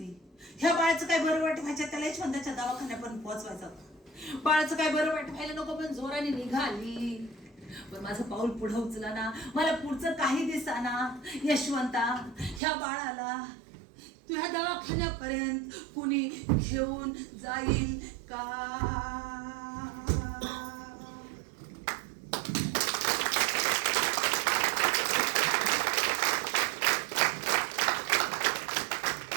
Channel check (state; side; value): drops out; left; at 12.6 s